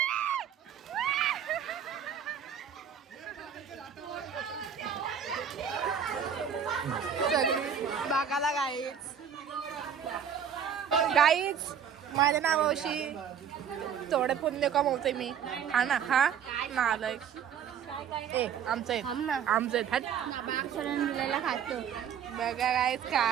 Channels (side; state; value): left; quieter; 8.0 dB